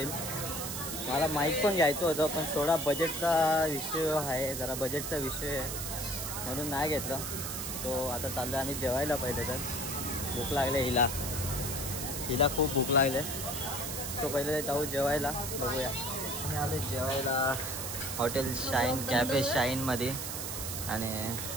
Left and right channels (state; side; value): noise; right; hiss, 4 dB below the sound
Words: मला माईक पण घ्यायचं होतं, पण थोडा बजेटचा विषय आहे, जरा बजेटचा विषय आहे म्हणून नाही घेतलं. तो आता चाललो आम्ही जेवायला. पहिले तर भूक लागले हिला खूप भूक लागले. सो पहिले जाऊ जेवायला, बघूया. आम्ही आलो जेवायला हॉटेल शाईन, कॅफे शाईनमध्ये. आणि